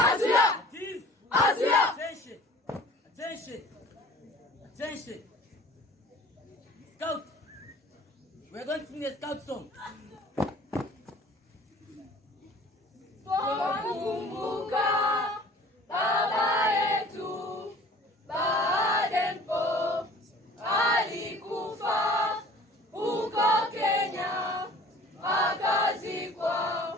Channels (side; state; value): both; normal; correlation 0.48